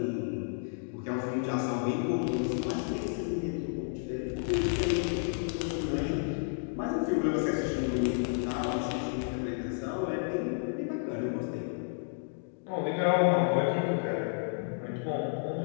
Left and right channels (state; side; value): silent; right; digital silence